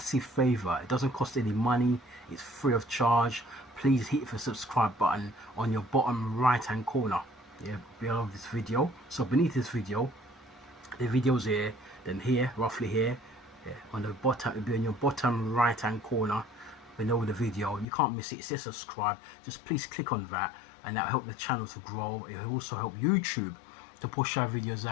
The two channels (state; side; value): drops out; right; at 17.9 s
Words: favour. It doesn't cost any money. It's free of charge. Please hit the subscribe button on your bottom right hand corner. Yeah, below this video. So beneath this video, the video's here, then here, roughly here. Yeah, on the bottom, it'll be on your bottom right hand corner below the video. You can't miss it. It says subscribe. Just please click on that, and that'll help the channel to grow. It will also help YouTube to push our videos